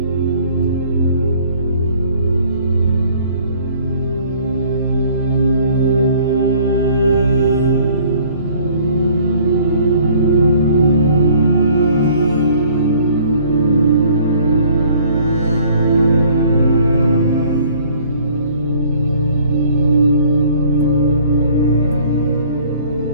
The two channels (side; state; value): both; inverted; correlation -0.56